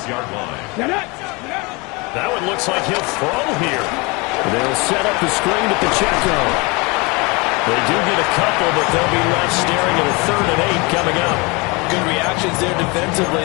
line. That one looks like he'll throw here. They'll set up the screen at the check-down. They do get a couple, but they'll be left staring at a 3rd and 8 coming up. Good reactions there defensively.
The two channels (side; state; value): right; quieter; 27.4 dB